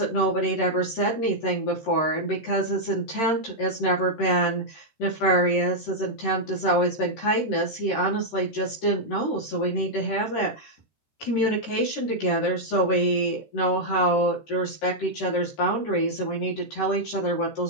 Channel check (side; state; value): right; late; 13 ms